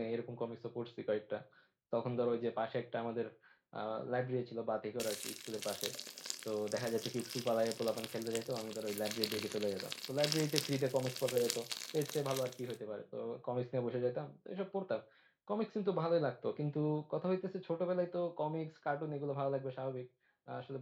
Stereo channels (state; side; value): identical; both; correlation 1.00